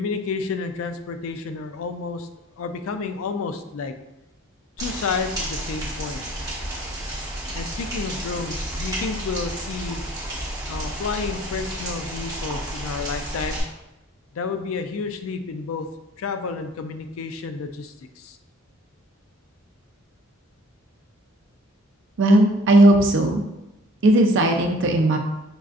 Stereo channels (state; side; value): normal; both; correlation 0.54